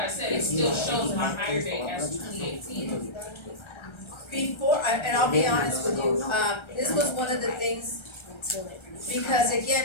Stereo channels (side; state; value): right; late; 1.3 ms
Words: I said, it still shows my hire date as 2018. Before, and I'll be honest with you, this was one of the things, because